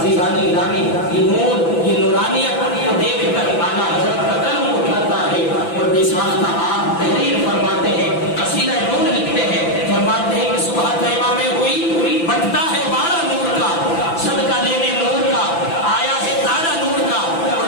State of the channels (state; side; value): late; right; 5.9 ms